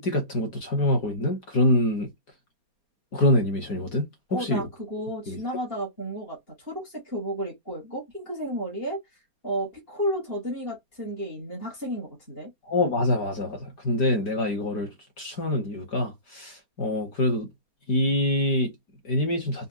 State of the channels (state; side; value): late; right; 5.0 ms